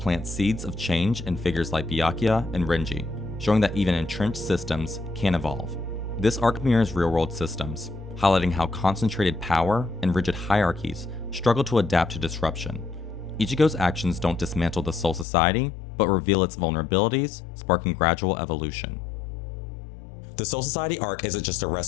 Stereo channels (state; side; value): drops out; right; at 15.2 s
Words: seeds of change in figures like Byakuya and Renji, showing that even entrenched systems can evolve. This arc mirrors real-world systems, highlighting how concentrated power and rigid hierarchies struggle to adapt to disruption. Ichigo's actions don't dismantle the Soul Society, but reveal its vulnerabilities, sparking gradual evolution. The Soul Society arc isn't just a